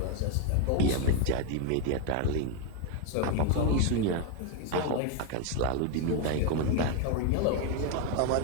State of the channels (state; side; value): different; both; correlation 0.01